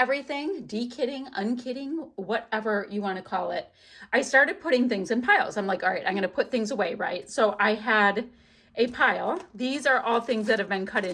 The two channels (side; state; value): both; identical; correlation 1.00